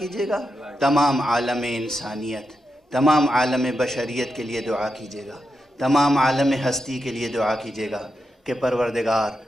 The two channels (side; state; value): both; normal; correlation 0.87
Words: گا، تمام عالم انسانیت، تمام عالم بشریت کے لیے دعا کیجیے گا، تمام عالم ہستی کے لیے دعا کیجیے گا کہ پروردگار